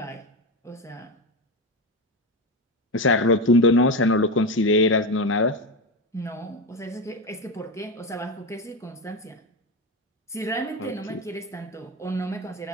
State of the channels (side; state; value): both; normal; correlation 0.16